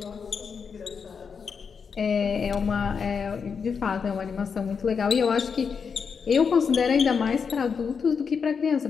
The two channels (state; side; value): quieter; right; 6.0 dB